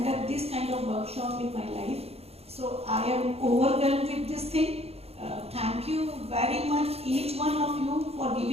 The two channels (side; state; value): left; late; 0.29 ms